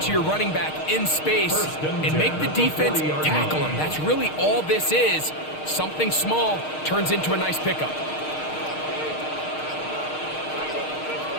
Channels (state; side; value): late; right; 6.5 ms